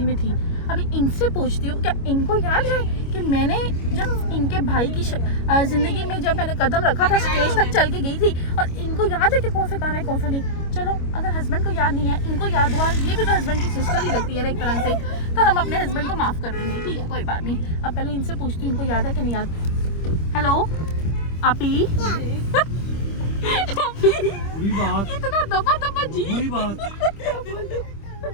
में थी। अभी इनसे पूछती हूँ, क्या इनको याद है कि मैंने जब इनके भाई की ज़िंदगी में जब मैंने कदम रखा था, स्टेज तक चल के गई थी, और इनको याद है कि कौन सा गाना है, कौन सा नहीं? चलो, अगर हस्बैंड को याद नहीं है, इनको याद हुआ, ये भी तो हस्बैंड की सिस्टर ही लगती है ना एक तरह से, तो हम अपने हस्बैंड को माफ़ कर देंगे, ठीक है? कोई बात नहीं। अब पहले इनसे पूछती हूँ इनको याद है कि नहीं याद। हेलो आपी। बुरी बात, इतना दबा जी। बुरी बात।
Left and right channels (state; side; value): late; right; 25 ms